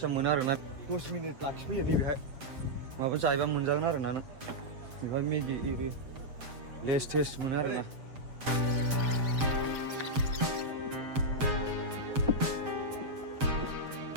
मोनो आरोना 10 मिनिट लाखिफैयो दे बेहाय माबा जायोबा मोनजागोन आरोना नों बेहाय मेगि एरि लेस टेस्ट मोनो आरोना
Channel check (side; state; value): left; late; 7.6 ms